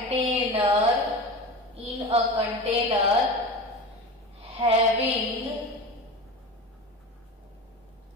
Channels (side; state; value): both; normal; correlation 0.29